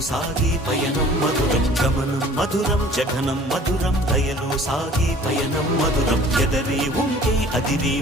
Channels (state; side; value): normal; both; correlation 0.49